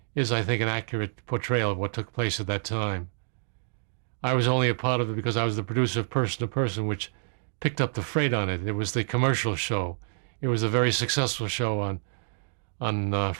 is, I think, an accurate portrayal of what took place at that time. I was only a part of it because I was the producer of Person to Person, which picked up the freight on it. It was the commercial show. It was a very successful show on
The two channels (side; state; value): left; silent; digital silence